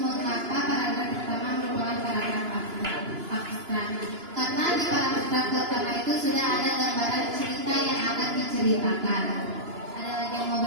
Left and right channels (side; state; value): left; late; 2.9 ms